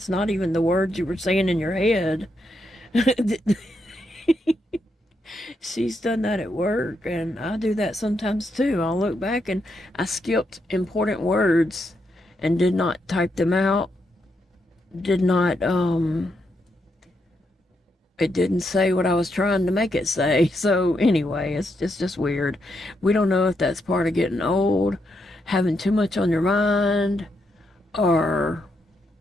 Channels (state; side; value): normal; both; correlation 0.80